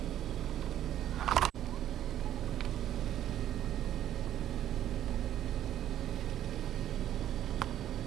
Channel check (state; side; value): quieter; left; 11.6 dB